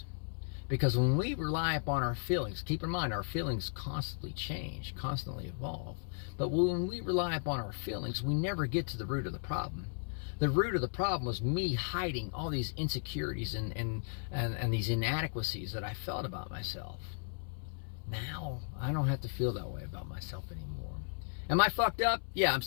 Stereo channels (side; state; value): right; silent; 54 dB below the other